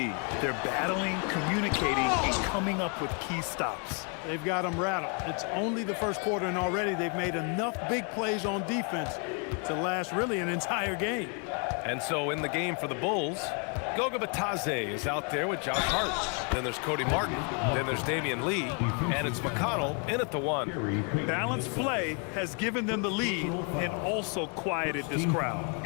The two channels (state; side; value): quieter; right; 37.5 dB